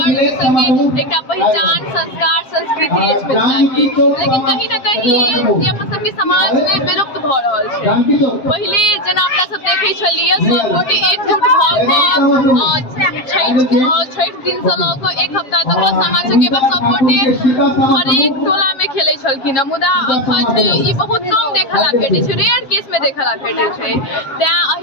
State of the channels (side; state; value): right; late; 7.4 ms